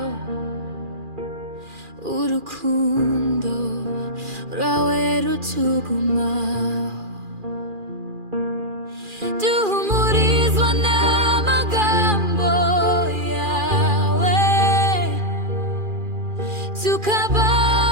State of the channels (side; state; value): left; late; 2.4 ms